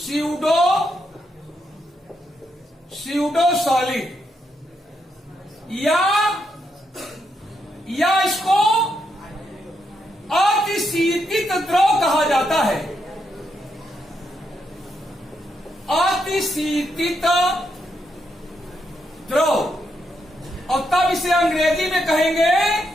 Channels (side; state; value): both; normal; correlation 0.80